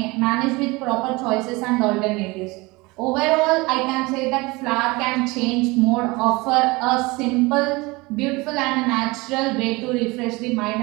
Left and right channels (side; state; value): left; quieter; 23.7 dB